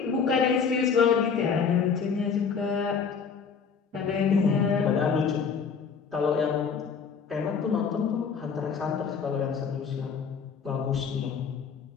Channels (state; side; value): quieter; right; 6.1 dB